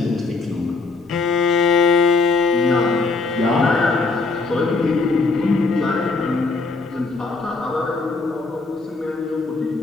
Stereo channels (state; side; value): quieter; right; 3.8 dB